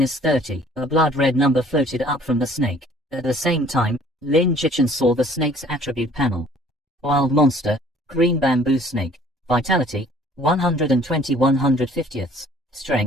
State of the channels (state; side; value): normal; both; correlation 0.55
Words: a blood-red number floated up from the snake. At the same time, Lin Jichin saw the snake's attribute panel. Wild monster, green bamboo snake, vitality, 120/150,